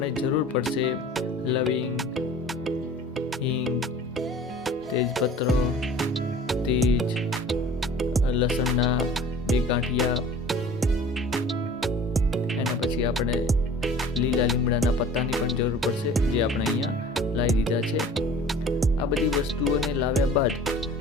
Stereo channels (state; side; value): normal; both; correlation 0.45